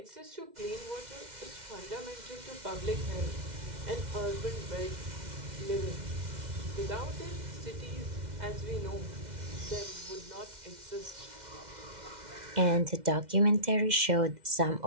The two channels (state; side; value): late; left; 2.1 ms